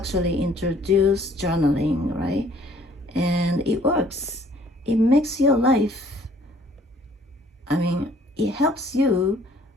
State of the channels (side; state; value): both; normal; correlation 0.59